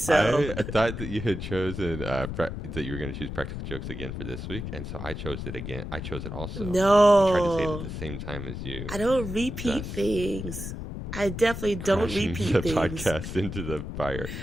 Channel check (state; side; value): noise; left; rumble, 7 dB below the sound